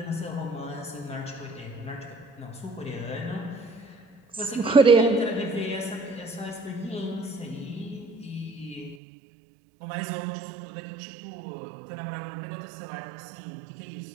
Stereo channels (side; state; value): left; drops out; at 9.0 s